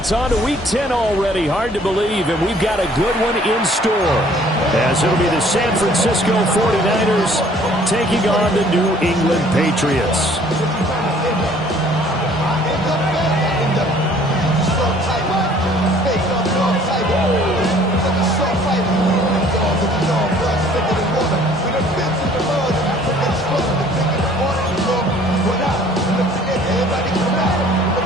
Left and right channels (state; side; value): normal; both; correlation 0.56